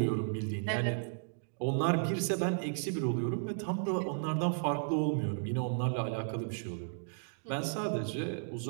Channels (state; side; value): silent; left; digital silence